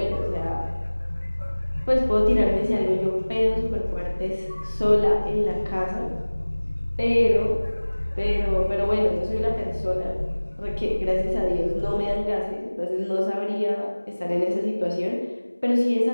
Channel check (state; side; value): inverted; both; correlation -1.00